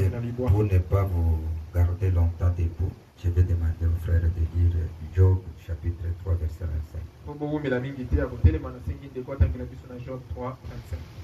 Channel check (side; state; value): both; identical; correlation 1.00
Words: pas vous garder longtemps debout, je vais demander au frère de lire Job chapitre 3 verset 25.